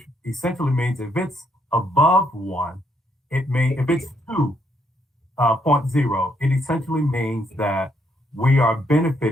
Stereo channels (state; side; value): normal; both; correlation 0.73